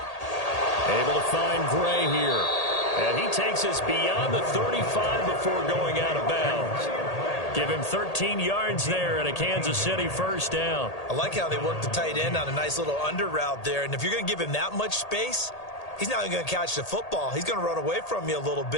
Able to find Gray here. And he takes us beyond the 35 before going out of bounds. Give him 13 yards there and a Kansas City first down. I like how they work the tight end on a nice little under route there. And if you're going to give him that much space, he's not even going to catch the football. He's going to run away from you a little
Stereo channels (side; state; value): right; late; 1.8 ms